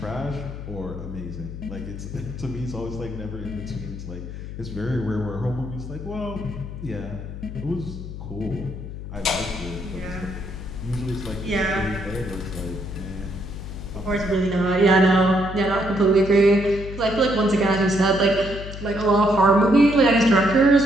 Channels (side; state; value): left; noise; hum, 9 dB below the sound